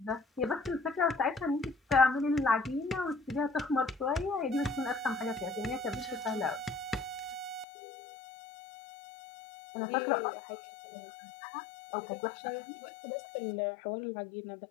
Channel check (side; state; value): right; drops out; at 7.7 s